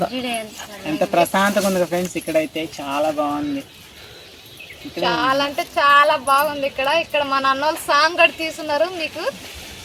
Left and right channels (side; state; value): both; identical; correlation 1.00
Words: ఎంత ప్రశాంతంగా ఉంది ఫ్రెండ్స్. ఇక్కడైతే చాలా బాగుంది. చాలా అంటే చాలా బాగుంది ఇక్కడ. ఇక్కడ మా నాన్నోళ్ళు సాంగ్ కూడా తీసుకున్నారు. మీకు